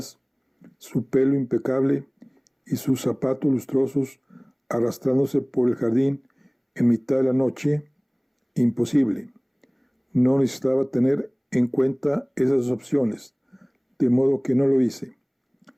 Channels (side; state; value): both; identical; correlation 1.00